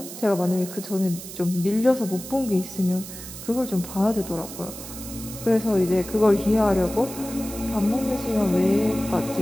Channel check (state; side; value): noise; right; hiss, 12 dB below the sound